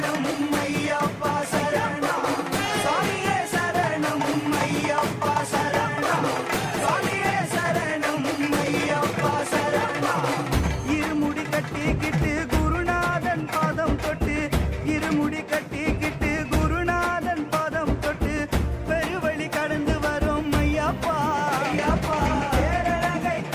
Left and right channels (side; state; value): both; identical; correlation 1.00